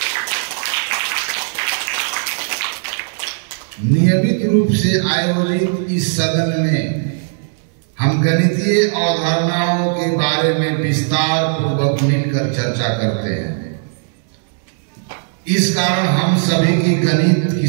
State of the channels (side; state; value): left; silent; digital silence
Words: नियमित रूप से आयोजित इस सदन में हम गणितीय अवधारणाओं के बारे में विस्तार पूर्वक मिलकर चर्चा करते हैं। इस कारण हम सभी की गणित की